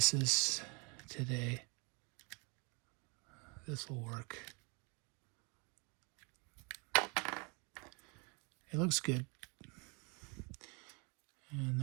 today, this will work. It looks good. And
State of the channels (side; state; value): left; quieter; 32.8 dB